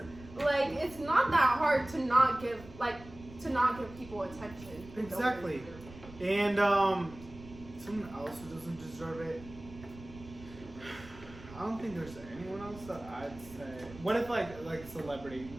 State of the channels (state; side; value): noise; right; rumble, 17 dB below the sound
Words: Like, it's not that hard to not give people attention. Exactly. And someone else who doesn't deserve it. I don't think there's anyone else that I'd say. What if like celebrity,